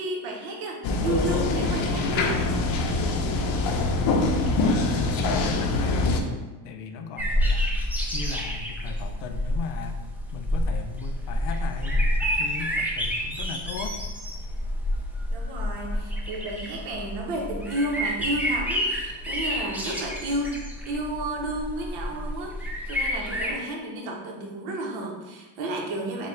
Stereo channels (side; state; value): both; normal; correlation 0.35